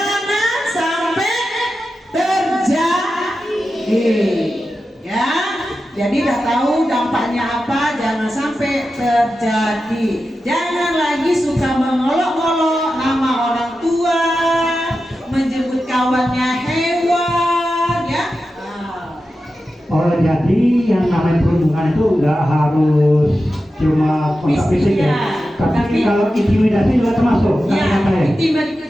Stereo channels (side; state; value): both; normal; correlation 0.91